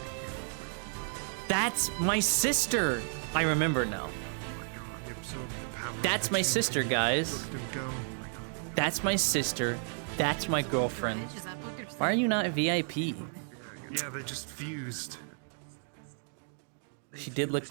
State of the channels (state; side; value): silent; left; 56 dB below the other